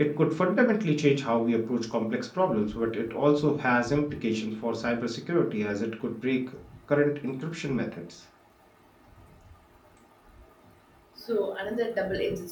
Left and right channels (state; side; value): identical; both; correlation 1.00